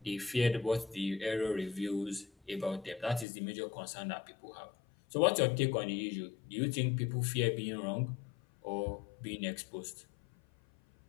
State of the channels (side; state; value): right; drops out; at 3.2 s